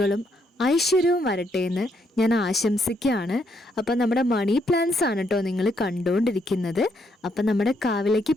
ഐശ്വര്യവും വരട്ടെ എന്ന് ഞാൻ ആശംസിക്കുകയാണ്. അപ്പം നമ്മുടെ മണി പ്ലാന്റ്സ് ആണ് കേട്ടോ നിങ്ങൾ കണ്ടുകൊണ്ടിരിക്കുന്നത്. അപ്പം നമ്മുടെ കാവിലേക്ക്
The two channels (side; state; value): both; normal; correlation 0.75